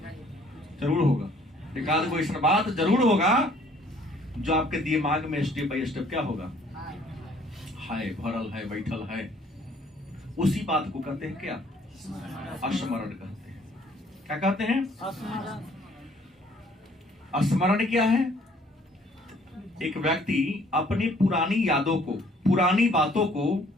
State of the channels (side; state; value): both; normal; correlation 0.60